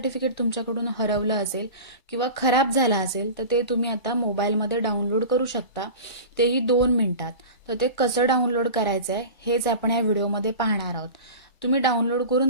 तुमच्याकडून हरवलं असेल किंवा खराब झालं असेल तर ते तुम्ही आता मोबाईलमध्ये डाउनलोड करू शकता, तेही 2 मिनिटात. तर ते कसं डाउनलोड करायचं आहे हेच आपण या व्हिडिओमध्ये पाहणार आहोत. तुम्ही डाउनलोड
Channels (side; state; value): both; inverted; correlation -0.33